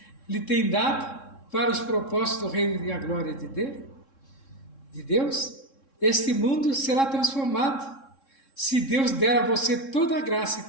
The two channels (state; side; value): late; right; 3.7 ms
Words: lhe tem dado para os propósitos do reino e a glória de Deus. Este mundo será transformado se Deus der a você toda a graça e